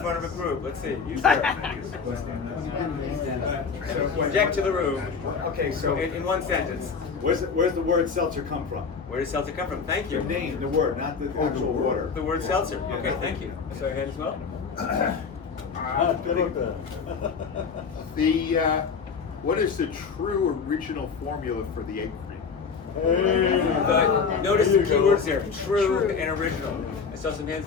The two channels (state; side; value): quieter; right; 5.6 dB